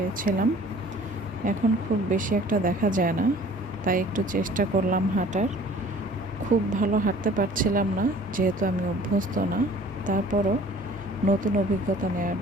এখন খুব বেশি একটা দেখা যায় না, তাই একটু চেষ্টা করলাম হাঁটার। খুব ভালো হাঁটতে পারছিলাম না, যেহেতু আমি অভ্যস্ত না। তারপরও নতুন অভিজ্ঞতা নেওয়ার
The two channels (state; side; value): normal; both; correlation 0.50